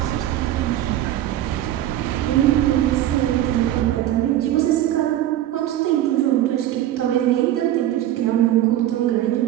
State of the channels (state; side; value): quieter; left; 12.9 dB